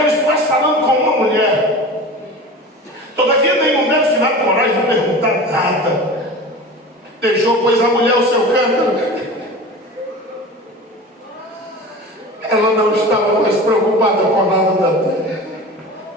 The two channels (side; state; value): both; normal; correlation 0.34